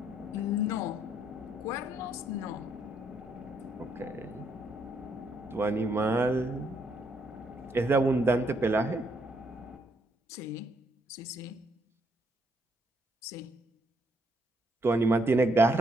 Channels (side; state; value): both; normal; correlation 0.73